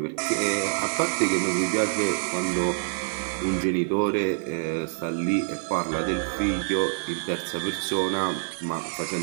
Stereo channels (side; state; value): left; silent; 61 dB below the other